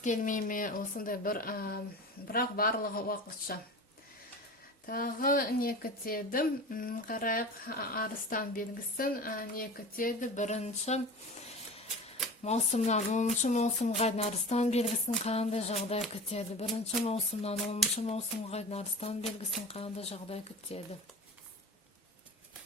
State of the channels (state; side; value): normal; both; correlation 0.34